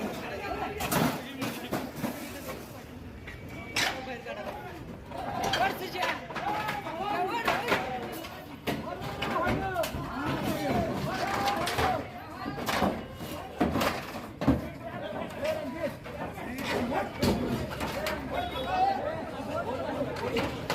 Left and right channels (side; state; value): both; identical; correlation 1.00